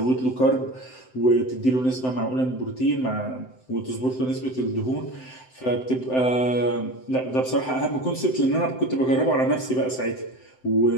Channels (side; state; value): right; late; 7.8 ms